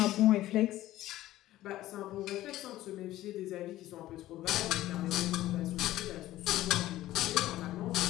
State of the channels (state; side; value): quieter; right; 15.1 dB